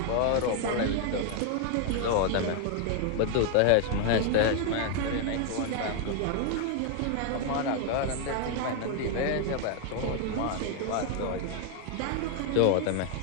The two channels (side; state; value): both; different; correlation 0.00